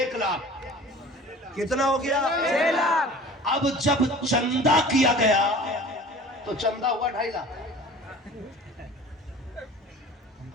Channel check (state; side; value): normal; both; correlation 0.43